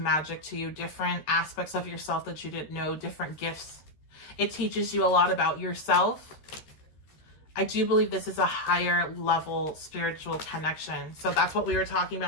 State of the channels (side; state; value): right; late; 13 ms